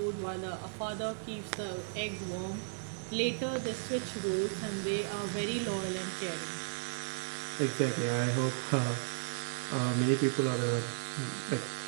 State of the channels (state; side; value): silent; left; digital silence